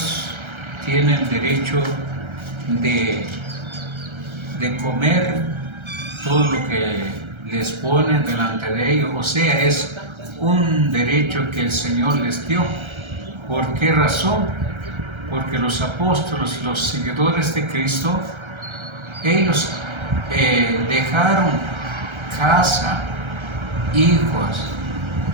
tienen derecho de comer todo lo que les ponen delante de ellos, o sea, es un derecho que el Señor les dio. ¿Por qué razón? Porque los apóstoles, los seguidores de Cristo, ellos dejaron casa, hijos,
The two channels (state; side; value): late; left; 1.3 ms